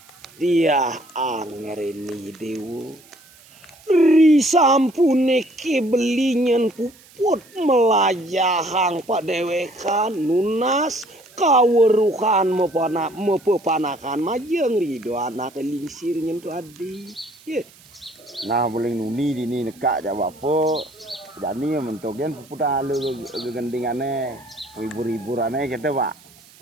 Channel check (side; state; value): right; noise; hiss, 25 dB below the sound